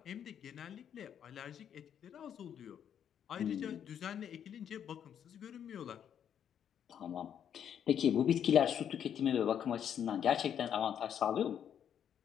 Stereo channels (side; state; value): right; quieter; 9.0 dB